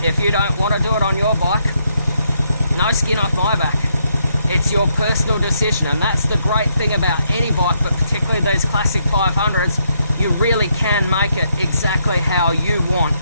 you don't want to do it on your bike, no skin off my back. It's your personal decision, and that's the great thing about any bike, but particularly these Classic 500s, you really can make it exactly how you want.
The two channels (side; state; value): both; inverted; correlation -0.76